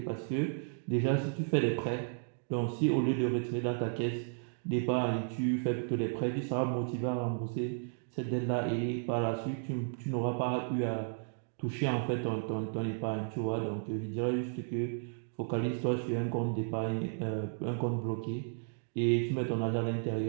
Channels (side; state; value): left; silent; digital silence